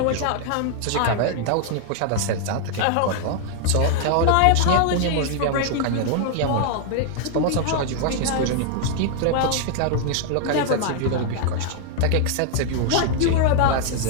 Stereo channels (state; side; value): different; both; correlation 0.00